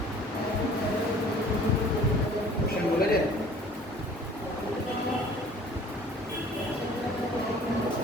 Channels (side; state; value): both; normal; correlation 0.50